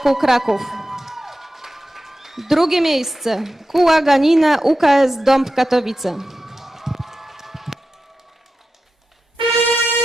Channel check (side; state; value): both; normal; correlation 0.92